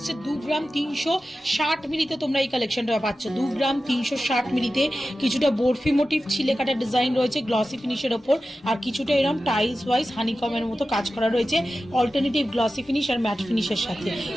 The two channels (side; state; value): both; normal; correlation 0.94